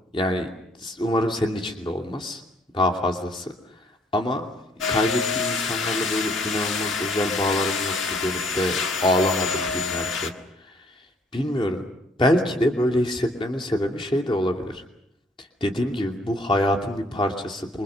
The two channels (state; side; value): normal; both; correlation 0.64